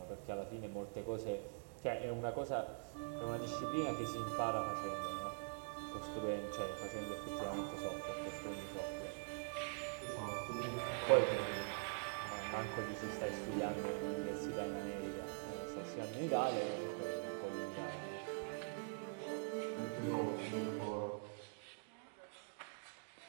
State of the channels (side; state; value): left; silent; digital silence